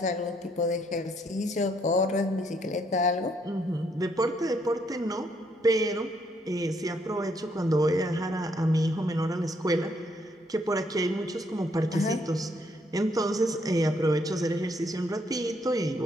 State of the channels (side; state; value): both; normal; correlation 0.71